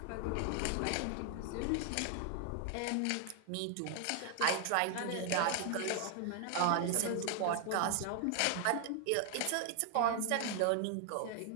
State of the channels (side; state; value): both; different; correlation 0.00